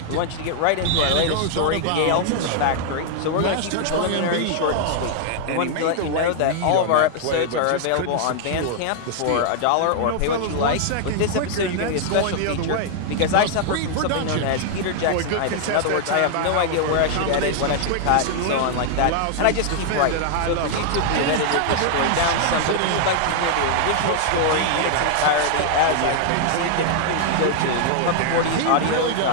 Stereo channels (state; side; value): different; both; correlation 0.00